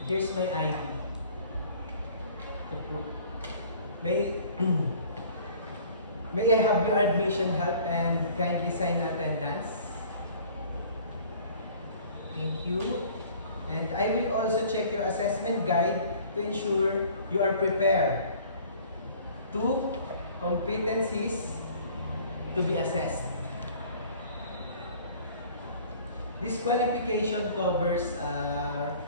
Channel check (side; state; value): both; inverted; correlation -0.51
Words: here's my ID. May I have your admission help and kindly sign attendance. Thank you. And I will also check your assessment guide to ensure you are prepared. 2 competencies to be assessed. This qualification covers